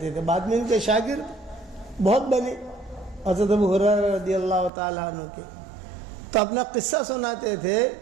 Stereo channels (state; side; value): drops out; left; at 4.7 s